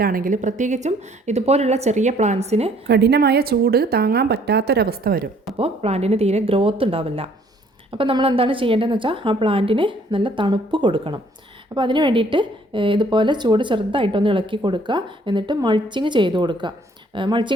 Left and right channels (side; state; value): both; normal; correlation 0.61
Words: ആണെങ്കിൽ, പ്രത്യേകിച്ചും ഇതുപോലുള്ള ചെറിയ പ്ലാന്റ്സിന് കഠിനമായ ചൂട് താങ്ങാൻ പറ്റാത്തൊരവസ്ഥ വരും. അപ്പോൾ പ്ലാന്റിന് തീരെ ഗ്രോത്ത് ഉണ്ടാവില്ല. അപ്പോൾ നമ്മൾ എന്താണ് ചെയ്യേണ്ടതെന്ന് വെച്ചാൽ ആ പ്ലാന്റിന് നല്ല തണുപ്പ് കൊടുക്കണം. അപ്പോൾ അതിന് വേണ്ടിയിട്ട് ഇതുപോലെ ചൂട് ചെറുതായിട്ടൊന്ന് ഇളക്കി കൊടുക്കുക. എന്നിട്ട് മൾച്ചിങ് ചെയ്ത് കൊടുക്കുക.